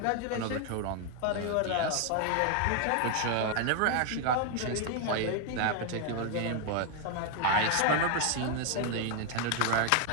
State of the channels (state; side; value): different; both; correlation 0.01